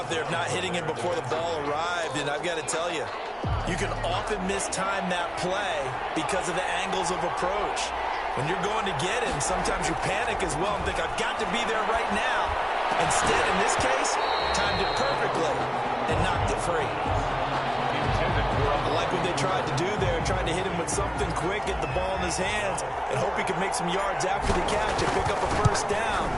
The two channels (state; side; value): identical; both; correlation 1.00